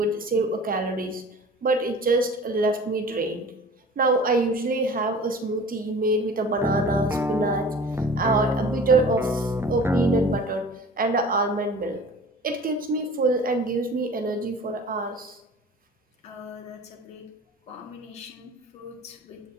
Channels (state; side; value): normal; both; correlation 0.43